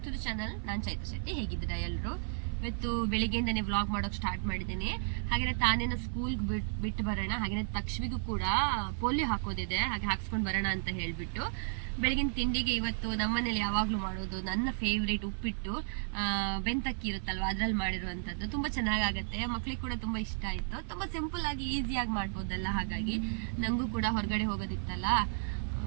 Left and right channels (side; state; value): left; silent; 56 dB below the other